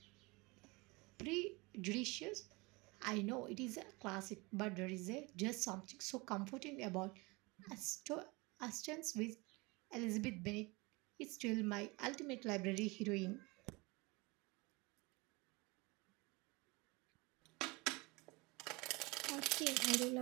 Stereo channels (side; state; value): left; quieter; 25.5 dB